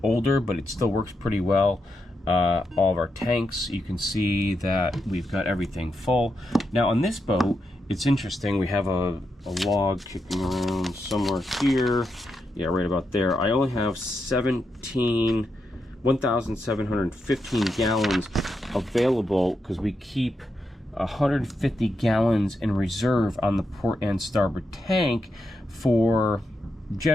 older, but it still works pretty well. All of our tanks, you can see that we've got everything full. Now on this boat, it's interesting, we have a log kicking around somewhere here. Yeah, right about there. I only have 1,715 gallons available because we keep 150 gallons in reserve on the port and starboard tank for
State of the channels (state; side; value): normal; both; correlation 0.85